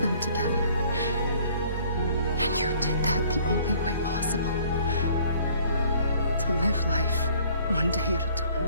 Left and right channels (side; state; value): both; inverted; correlation -0.56